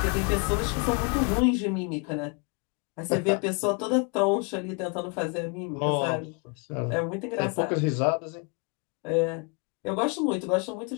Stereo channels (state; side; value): quieter; right; 33.9 dB